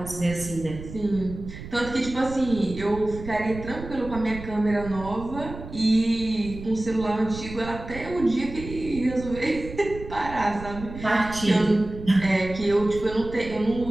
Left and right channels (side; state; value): right; noise; rumble, 12 dB below the sound